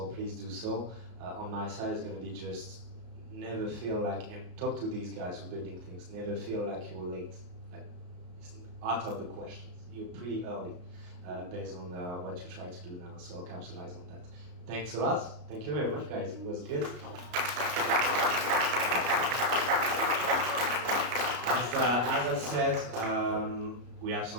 please do so. On my side, it's going to be just never feel like, and talk to these guys who are building things, never feel like you're late. Like, it's out of the questions. You're pretty early based on what you try to do now, so capitalize on that. Thanks a lot. Thank you very much, guys. It was good. As I said, we have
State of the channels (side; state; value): left; late; 33 ms